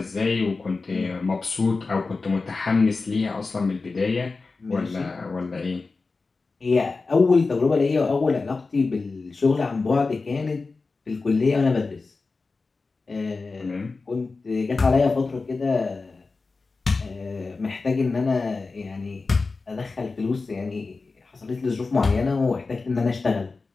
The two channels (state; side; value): quieter; right; 4.0 dB